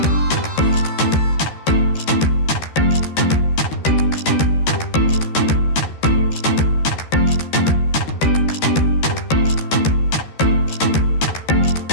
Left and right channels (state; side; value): late; right; 13 ms